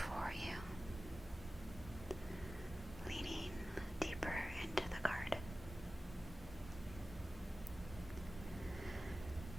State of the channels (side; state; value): both; normal; correlation 0.96